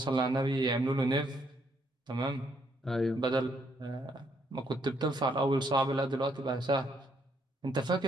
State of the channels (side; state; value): both; normal; correlation 0.72